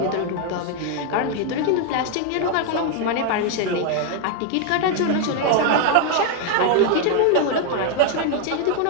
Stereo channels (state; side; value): different; both; correlation 0.00